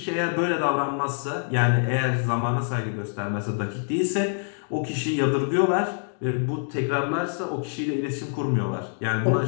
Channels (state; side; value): silent; right; digital silence